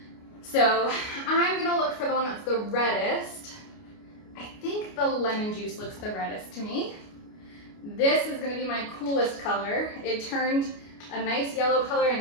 So I'm gonna look for the one that's the reddest. I think the lemon juice looks the reddest to me. This is gonna be my coolest color. It turned a nice yellow color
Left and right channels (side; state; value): right; late; 29 ms